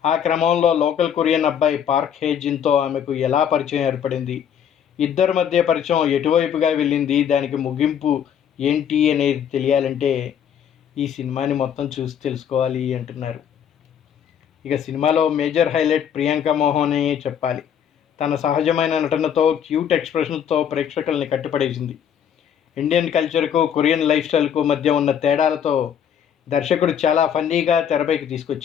ఆ క్రమంలో లోకల్ కొరియన్ అబ్బాయి పార్క్ హేజిన్తో ఆమెకు ఎలా పరిచయం ఏర్పడింది, ఇద్దరి మధ్య పరిచయం ఎటువైపుగా వెళ్ళింది, దానికి ముగింపు ఏంటి అనేది తెలియాలంటే ఈ సినిమాని మొత్తం చూసి తెలుసుకోవాలి అంటున్నారు. ఇక సినిమాలో మేజర్ హైలైట్ ప్రియాంక మోహనే చెప్పాలి. తన సహజమైన నటనతో, క్యూట్ ఎక్స్ప్రెషన్తో ప్రేక్షకుల్ని కట్టిపడేసింది. ఇండియన్ కల్చర్కు, కొరియన్ లైఫ్ స్టైల్కు మధ్య ఉన్న తేడాలతో దర్శకుడు చాలా ఫన్నీగా తెరపైకి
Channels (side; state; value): right; quieter; 8.7 dB